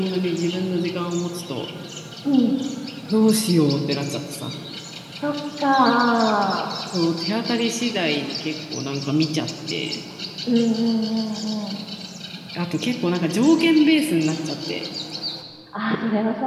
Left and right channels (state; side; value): identical; both; correlation 1.00